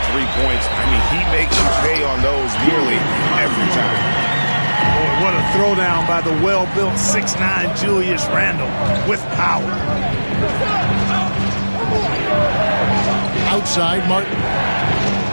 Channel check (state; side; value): inverted; both; correlation -1.00